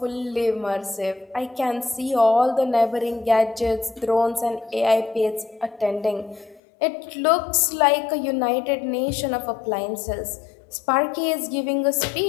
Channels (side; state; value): right; drops out; at 6.6 s